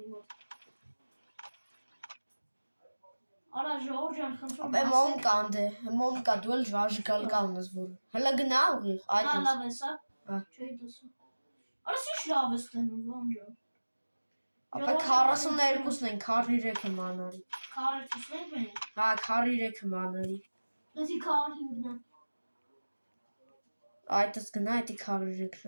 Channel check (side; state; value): both; inverted; correlation -1.00